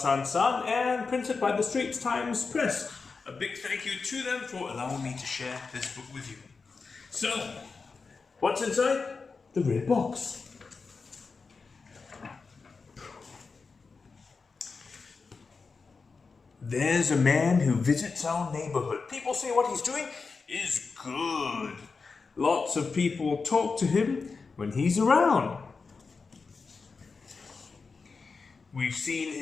San and printed by the Straits Times Press. A big thank you to them for allowing me to share this book with you. So, what's inside the red box? There's a man who visits our neighborhood. People say what he's doing is good. Lots of people talk to him when he's around. We've seen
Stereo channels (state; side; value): quieter; right; 4.6 dB